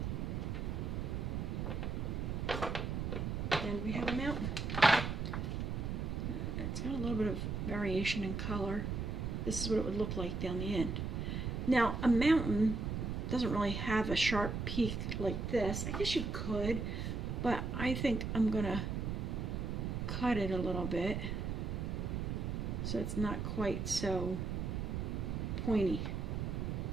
And we have a mountain. It's got a little bit of variation in color. This is what it would look like down the end. Now, a mountain doesn't really have a sharp peak like this. I guess you could, but I think I'm gonna cut it a little bit so it's not quite so pointy.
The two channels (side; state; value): right; noise; rumble, 2 dB below the sound